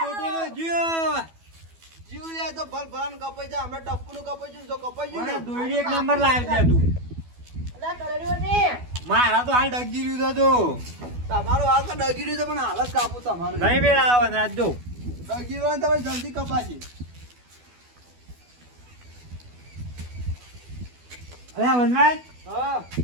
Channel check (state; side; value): late; left; 12 ms